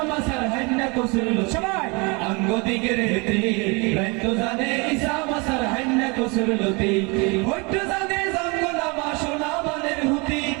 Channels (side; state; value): left; quieter; 29.0 dB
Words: মাসার হাইন কসুর লতি সবাই আঙ্গু দিগের হেতি রাত জানে ইসা মাসার হাইন কসুর লতি হইতো জানে জঙ্গলা মা সোনা বানের হুতি